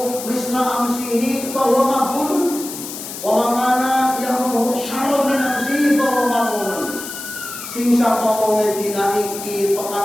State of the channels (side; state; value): left; noise; hiss, 10 dB below the sound